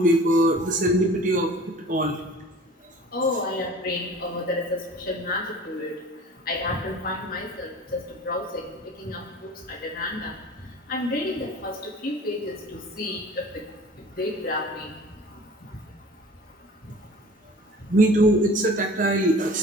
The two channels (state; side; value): normal; both; correlation 0.44